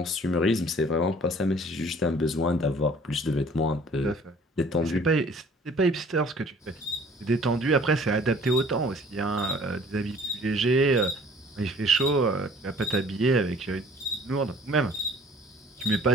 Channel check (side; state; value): both; normal; correlation 0.52